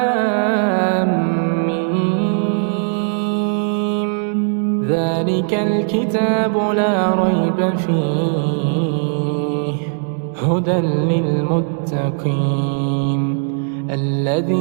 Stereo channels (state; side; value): silent; left; 66 dB below the other